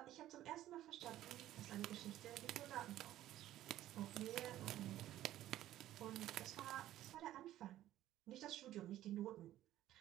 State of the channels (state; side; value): quieter; left; 13.6 dB